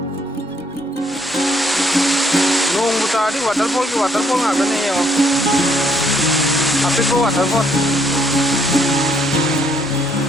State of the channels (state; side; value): normal; both; correlation 0.69